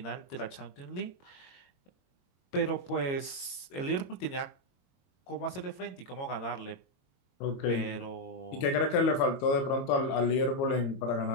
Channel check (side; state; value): right; late; 22 ms